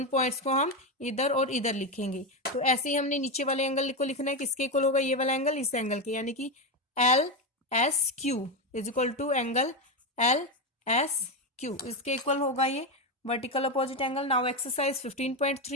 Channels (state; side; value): normal; both; correlation 0.12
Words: पॉइंट्स को हम इधर और इधर लिखेंगे। तो ऐसे ही हमने नीचे वाले एंगल को लिखना है। किसके इक्वल होगा? ये वाला एंगल इस एंगल के, यानी कि LSQ is equal to angle LSQ। इसके इक्वल होगा ये vertical opposite angle. Now exercise